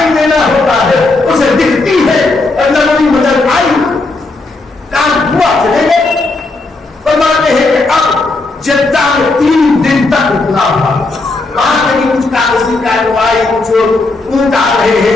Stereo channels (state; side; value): quieter; right; 3.3 dB